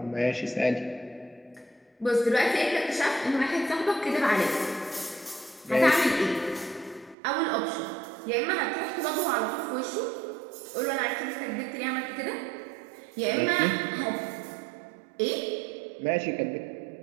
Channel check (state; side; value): drops out; left; at 7.2 s